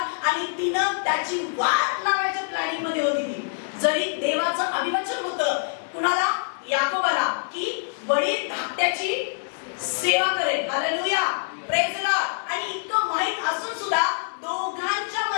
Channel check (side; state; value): right; silent; digital silence